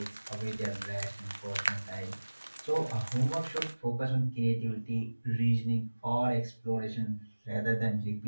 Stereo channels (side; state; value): both; inverted; correlation -1.00